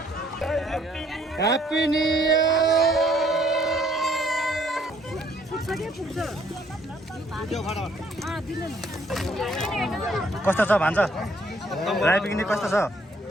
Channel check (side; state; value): both; normal; correlation 0.65